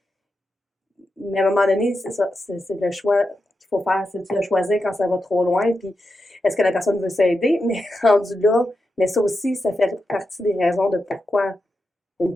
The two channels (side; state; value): both; normal; correlation 0.88